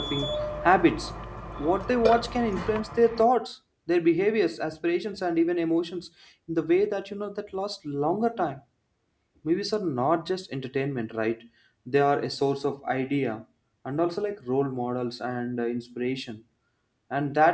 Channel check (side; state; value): both; identical; correlation 1.00